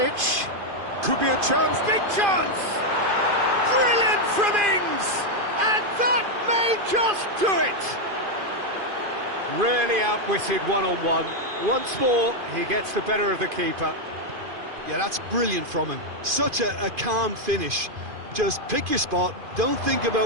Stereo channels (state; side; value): late; left; 2.5 ms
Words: Could be a chance. Big chance! Brilliant from Ings! And that may just do it! Really outwitted one-on-one. Once more, he gets the better of the keeper. Yeah, that's brilliant from him. Such a calm finish. Just pick your spot, don't think